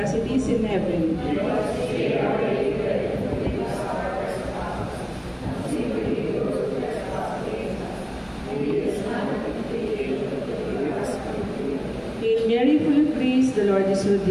it is in heaven. Hail Mary, full of grace, the Lord is with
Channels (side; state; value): both; identical; correlation 1.00